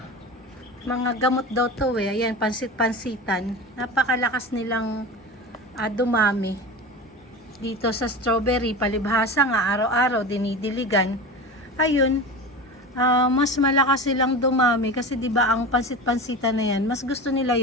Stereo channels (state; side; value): normal; both; correlation 0.30